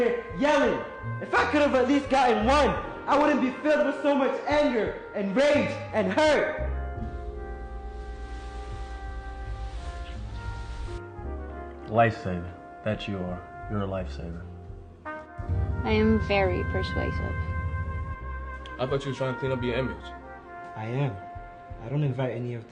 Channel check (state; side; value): identical; both; correlation 1.00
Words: yelling. If I could have at least gotten one, I wouldn't be filled with so much anger and rage and hurt. Lifesaver. That you are. You're a lifesaver. I am very persuasive. I thought you were trying to clean up your image. I am. I don't invite any of